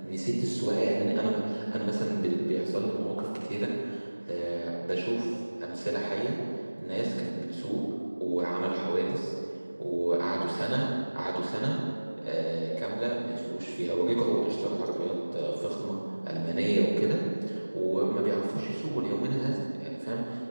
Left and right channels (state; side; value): inverted; both; correlation -1.00